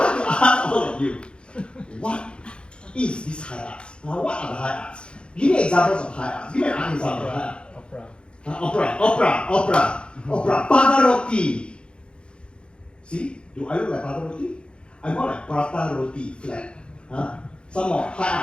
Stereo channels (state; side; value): late; right; 0.055 ms